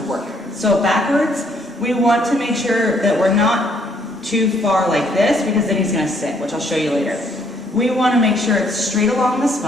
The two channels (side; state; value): both; normal; correlation 0.67